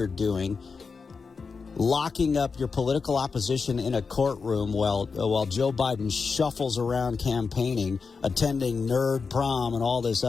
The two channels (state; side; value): quieter; right; 5.0 dB